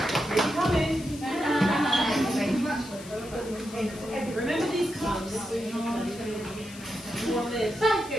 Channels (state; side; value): noise; left; hiss, 17 dB below the sound